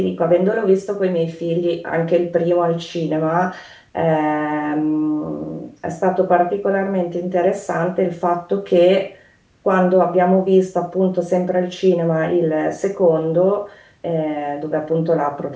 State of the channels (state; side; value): identical; both; correlation 1.00